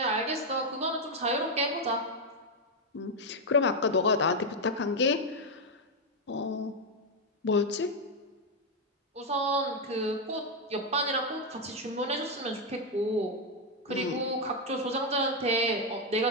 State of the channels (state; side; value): normal; both; correlation 0.03